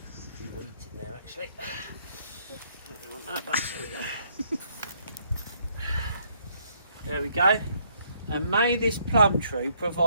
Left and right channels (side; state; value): both; inverted; correlation -0.69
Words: few weeds in there, actually. Don't want that, but there we go. And may this plum tree